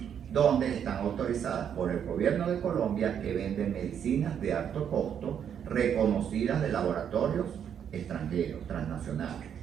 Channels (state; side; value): quieter; left; 8.5 dB